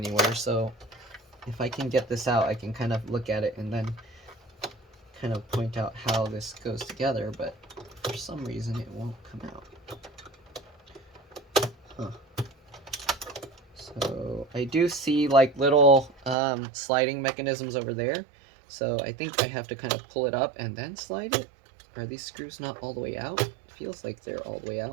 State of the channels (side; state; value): left; drops out; at 16.4 s